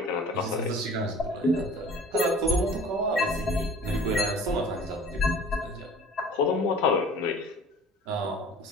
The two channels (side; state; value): both; normal; correlation 0.46